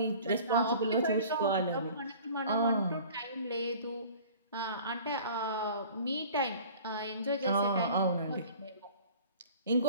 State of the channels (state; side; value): inverted; both; correlation -0.46